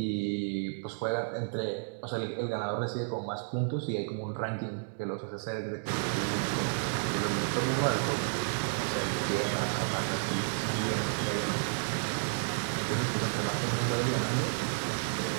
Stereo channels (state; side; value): silent; left; digital silence